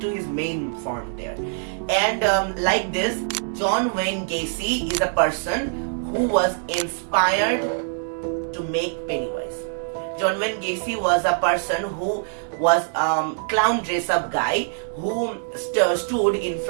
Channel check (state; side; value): silent; left; digital silence